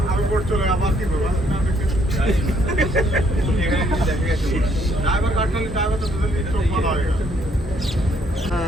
আমি বোট চলে আবার কি করবো ড্রাইভার কাটলে ড্রাইভার তো দুজন চোখ বাঁধা হয়ে গেল।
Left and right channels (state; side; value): normal; both; correlation 0.68